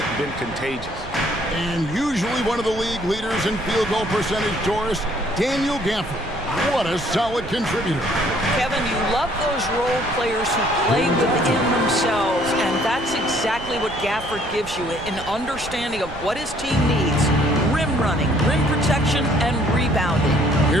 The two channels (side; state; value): right; noise; rumble, 14 dB below the sound